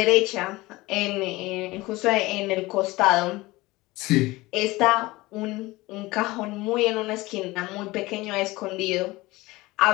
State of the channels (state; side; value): quieter; right; 20.4 dB